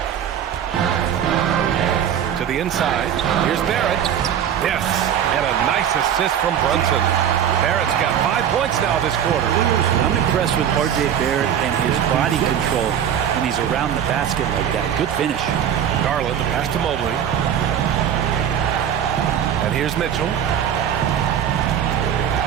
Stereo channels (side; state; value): left; quieter; 9.3 dB